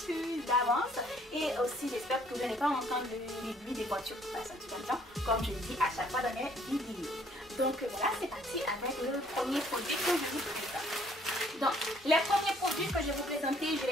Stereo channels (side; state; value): both; normal; correlation 0.62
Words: d'avance. Et aussi j'espère que vous n'allez pas entendre les bruits des voitures qui passent un petit peu de temps, comme je le dis à chaque fois dans mes vidéos. Donc voilà, c'est parti avec le premier produit que je vous présente. Donc les premiers produits que je vais vous présenter, je